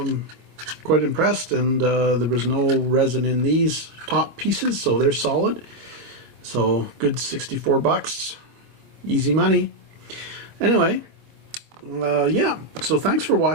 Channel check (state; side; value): late; left; 25 ms